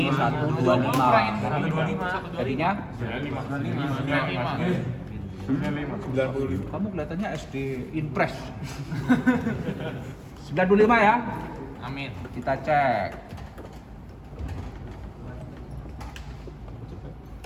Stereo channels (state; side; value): identical; both; correlation 1.00